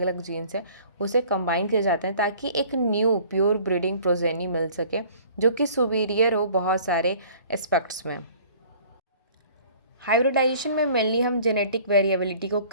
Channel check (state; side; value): inverted; both; correlation -0.51